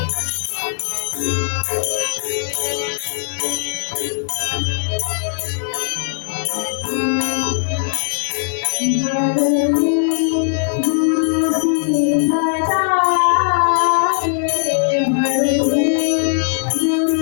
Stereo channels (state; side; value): silent; right; digital silence